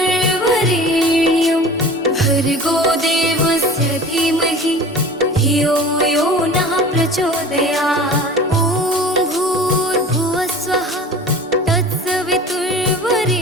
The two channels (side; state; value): both; normal; correlation 0.40